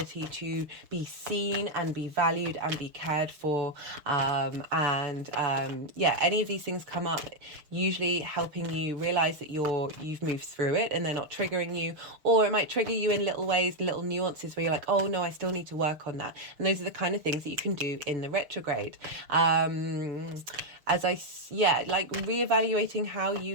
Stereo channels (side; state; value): left; late; 6.6 ms